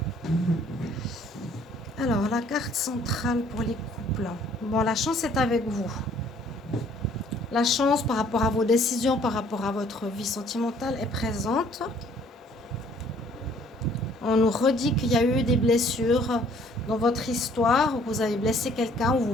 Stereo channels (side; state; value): both; normal; correlation 0.59